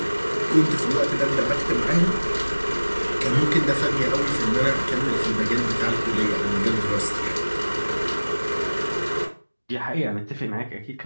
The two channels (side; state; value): both; inverted; correlation -1.00